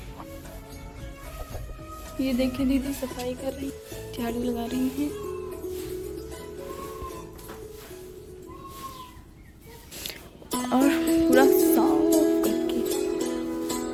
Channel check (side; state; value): both; identical; correlation 1.00